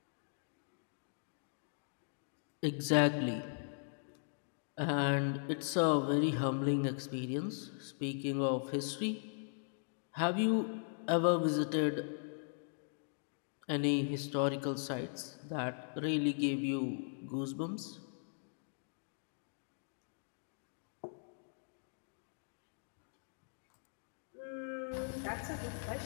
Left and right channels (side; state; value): right; silent; digital silence